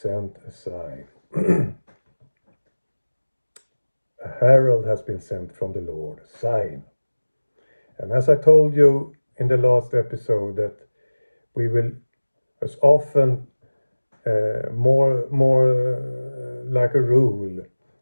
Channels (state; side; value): inverted; both; correlation -1.00